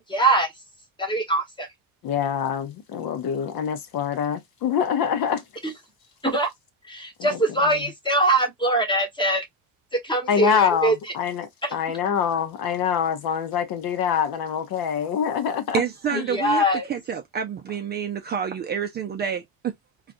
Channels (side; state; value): both; normal; correlation 0.06